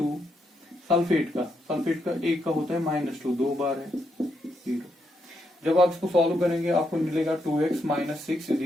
सल्फेट का 1 का होता है -2, 2 बार है, 0। जब आप इसको सॉल्व करेंगे आपको मिलेगा 2x - 6 is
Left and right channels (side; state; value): both; normal; correlation 0.80